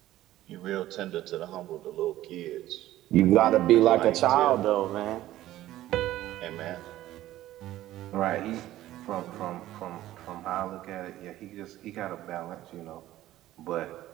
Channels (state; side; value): quieter; left; 14.6 dB